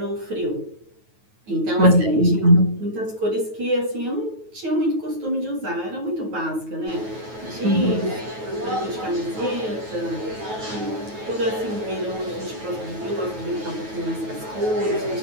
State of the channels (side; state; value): left; late; 9.3 ms